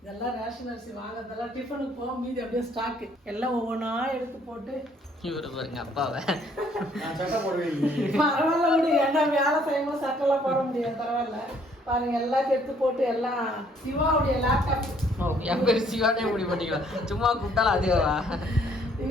இதெல்லாம் ரேஷன் அரிசி வாங்குறதெல்லாம் டிஃபனுக்கு போக மீதி அப்படியே ஸ்டாக்கு எல்லாம் ஒவ்வொன்றா எடுத்து போட்டு இவரு பாருங்க அப்பாவை பரவாயில்ல விடு. ஏன்னா வேலை செய்யும்போது சட்டெல்லாம் போட முடியாது. பரவாயில்ல பாருங்க எல்லாத்தையும் எடுத்து போட்டு எல்லாம் சிவாவுடைய லேப்டாப். என் பேர் சிவானே முடி பண்ணிக்கலாம். சும்மா கூப்பிட்டாலும் அதுவா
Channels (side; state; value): both; normal; correlation 0.64